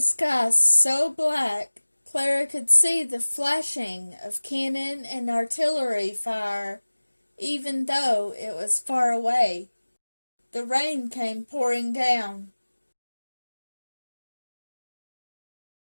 sky so black, Clara could see the flashing of cannon and artillery fire, even though it was far away. The rain came pouring down.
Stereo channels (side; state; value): both; inverted; correlation -1.00